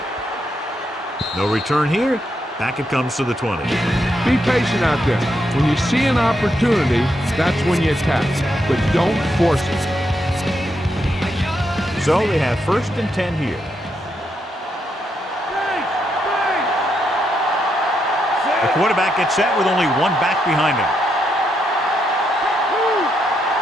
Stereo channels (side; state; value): both; normal; correlation 0.80